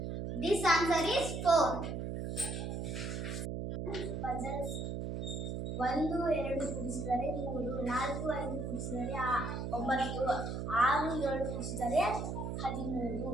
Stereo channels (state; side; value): noise; right; hum, 4 dB below the sound